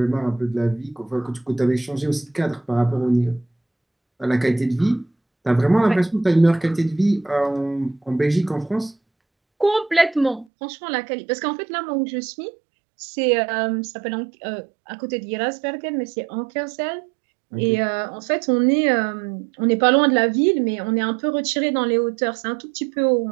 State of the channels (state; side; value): drops out; left; at 10.5 s